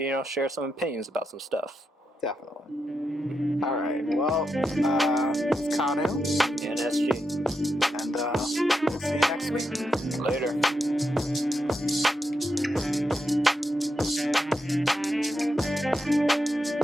share some opinions about some stuff. Definitely. All right. Well, it's Kanu. And SG. next week. Later.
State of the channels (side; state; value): both; normal; correlation 0.85